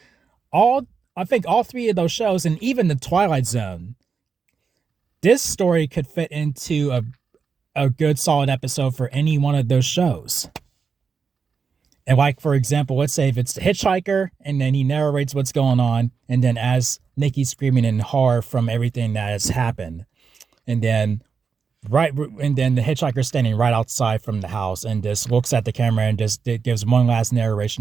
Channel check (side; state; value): left; quieter; 5.6 dB